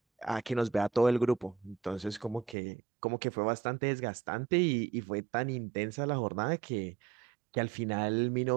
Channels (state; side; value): drops out; left; at 2.6 s